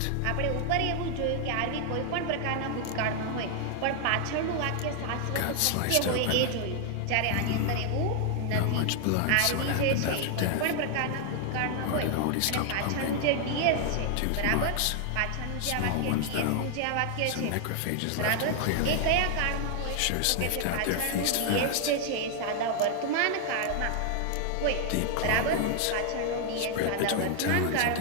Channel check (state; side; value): different; both; correlation 0.00